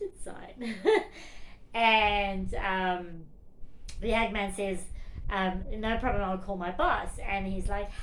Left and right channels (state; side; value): identical; both; correlation 1.00